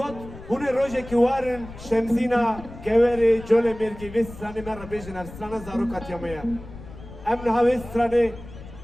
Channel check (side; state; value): left; noise; rumble, 15 dB below the sound